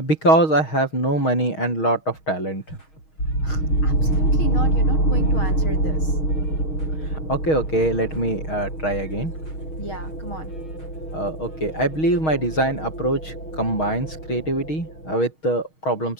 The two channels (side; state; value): right; late; 6.4 ms